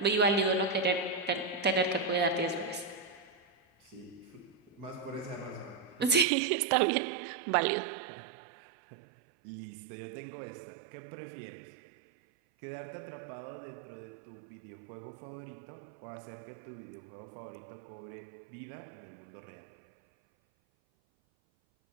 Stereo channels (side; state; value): left; drops out; at 6.2 s